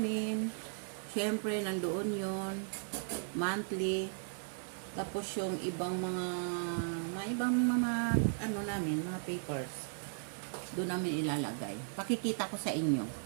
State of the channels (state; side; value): silent; left; 54 dB below the other